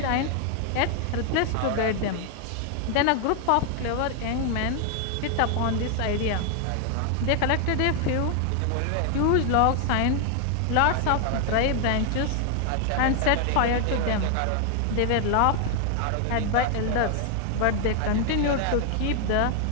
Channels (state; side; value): different; both; correlation 0.00